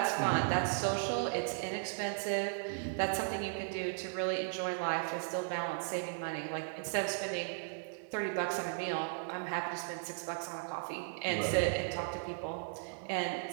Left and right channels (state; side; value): silent; left; digital silence